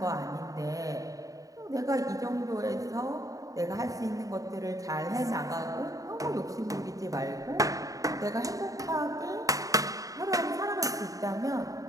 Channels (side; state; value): left; late; 0.17 ms